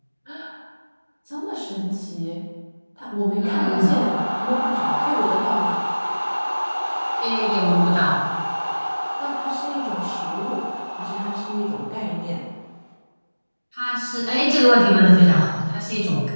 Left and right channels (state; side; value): inverted; both; correlation -1.00